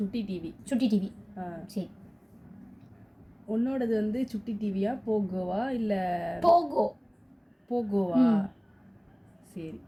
டிவி. சுட்டி டிவி. சரி. உன்னோடது வந்து சுட்டி டிவியா போகோவா இல்ல? போகோ. போகோவா? சரி.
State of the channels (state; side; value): identical; both; correlation 1.00